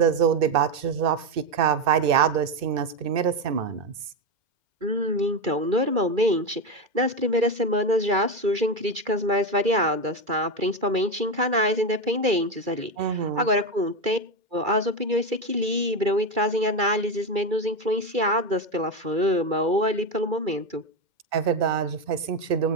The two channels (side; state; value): left; late; 2.6 ms